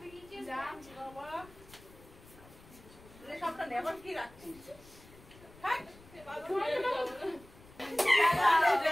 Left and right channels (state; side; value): noise; left; rumble, 22 dB below the sound